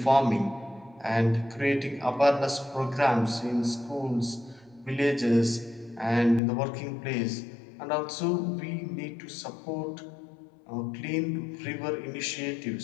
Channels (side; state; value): right; drops out; at 6.4 s